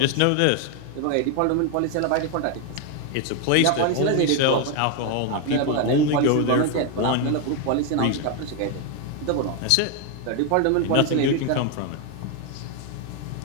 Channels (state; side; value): different; both; correlation 0.01